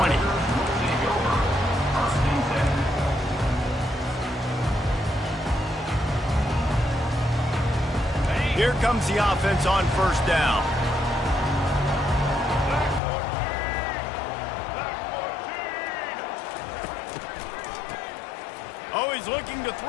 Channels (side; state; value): right; drops out; at 13.0 s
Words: Here comes the offense on first down. Oh, he's looking to